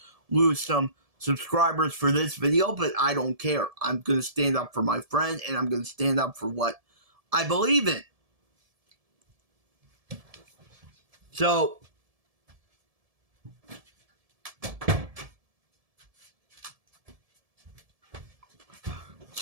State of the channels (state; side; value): late; left; 1.7 ms